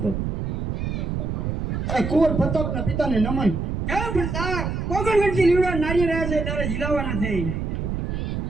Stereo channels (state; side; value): noise; right; rumble, 2 dB below the sound